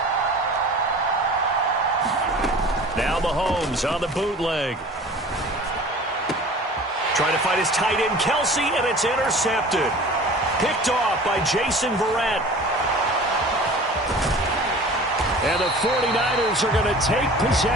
Now Mahomes on the bootleg. Trying to find his tight end, Kelsey, and it's intercepted. Picked off by Jason Verrett. And the 49ers are going to take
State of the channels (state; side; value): normal; both; correlation 0.42